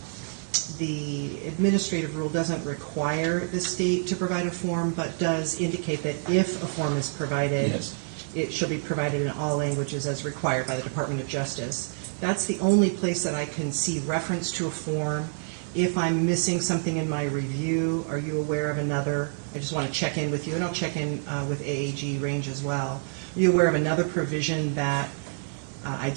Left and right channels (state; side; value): silent; left; 60 dB below the other